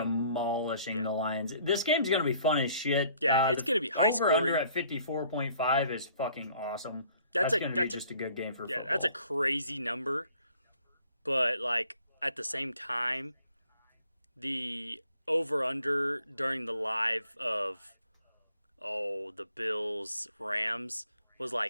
the Lions. This game's going to be fun as shit. Yeah, it's going to be high over-under scoring. at 54.5 is fucking awesome. That's going to be just a good game for football. that's a crazy number. But, at the same time, the over-under during the live of, the Bills-Rams was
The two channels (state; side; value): inverted; both; correlation -0.59